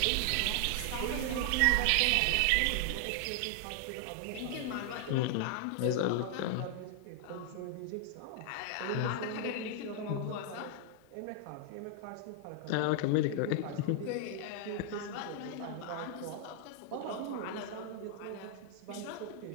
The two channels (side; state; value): both; different; correlation 0.00